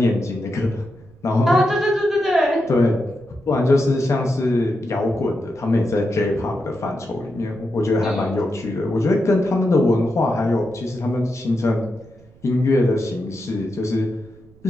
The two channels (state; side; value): noise; right; rumble, 27 dB below the sound